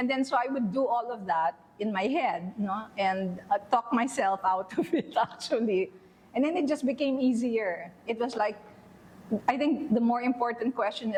then so I would do all of that in my head, and talk myself out of it, actually. And then it just became easier. It was like, I think the more important question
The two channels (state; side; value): identical; both; correlation 1.00